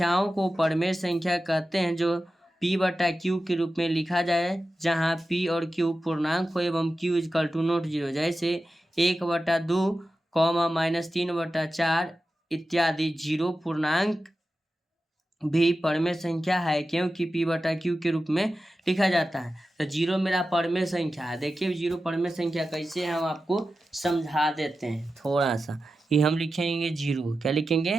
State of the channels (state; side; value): normal; both; correlation 0.93